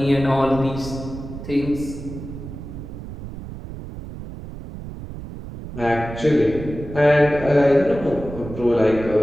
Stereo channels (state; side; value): noise; right; rumble, 11 dB below the sound